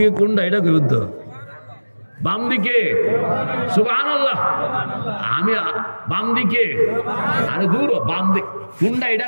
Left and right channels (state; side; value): inverted; both; correlation -1.00